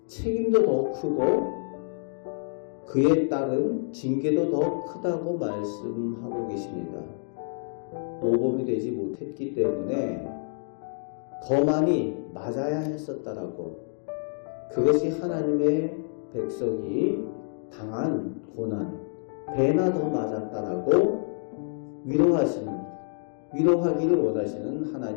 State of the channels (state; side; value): silent; right; digital silence